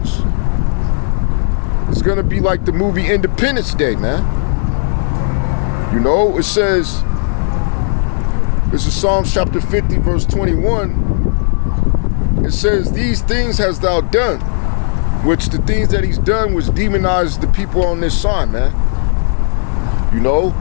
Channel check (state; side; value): silent; right; digital silence